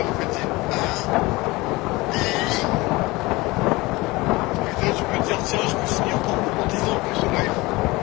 meuf elle dit. Putain, tu peux te dire, tiens, je me suis mis encore en 10 ans plus au life.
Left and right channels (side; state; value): right; quieter; 21.8 dB